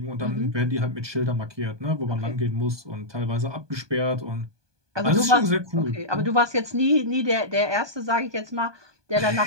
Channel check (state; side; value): late; left; 1.2 ms